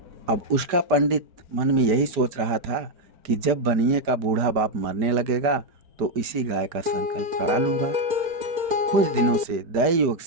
अब उसका पंडित मन में यही सोच रहा था कि जब बनिए का बूढ़ा बाप मरने लगेगा तो इसी गाय का संकल्प करा लूंगा। कुछ दिनों से दैव योग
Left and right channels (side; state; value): left; late; 5.0 ms